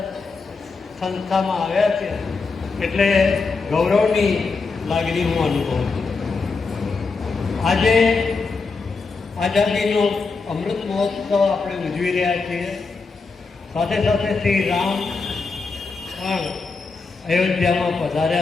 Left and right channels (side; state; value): right; quieter; 4.4 dB